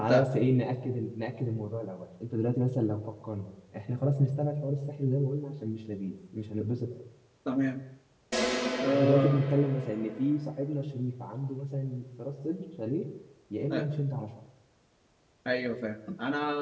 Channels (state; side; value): identical; both; correlation 1.00